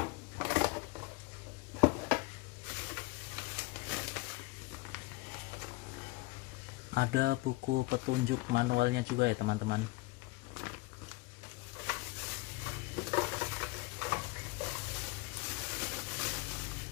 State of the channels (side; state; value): right; quieter; 22.7 dB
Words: Ada buku petunjuk manualnya juga ya teman-teman.